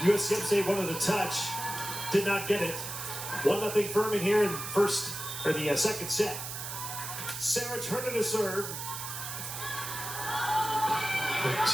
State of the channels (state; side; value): noise; right; hiss, 7 dB below the sound